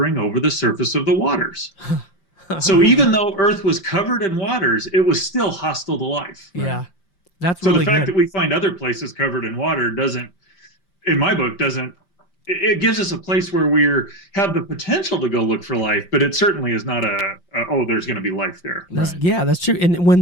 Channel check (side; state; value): right; late; 5.7 ms